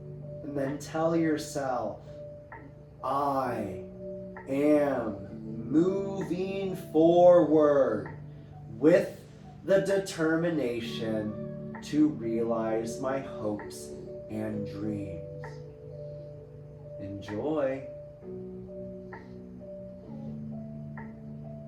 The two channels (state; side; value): identical; both; correlation 1.00